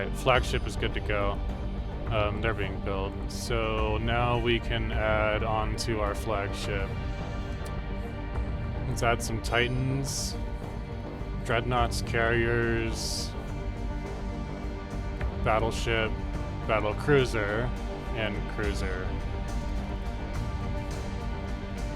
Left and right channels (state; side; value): identical; both; correlation 1.00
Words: flagship is good to go. They're being built. So now we can add on to our flagship. Let's add some Titans, Dreadnoughts, Carriers, Battleship, Battle Cruiser, and Cruiser.